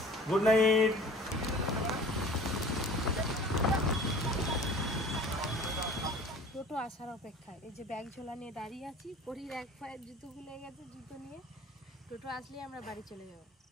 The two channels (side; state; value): both; normal; correlation 0.45